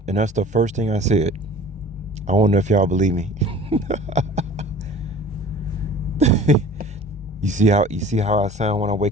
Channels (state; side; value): normal; both; correlation 0.45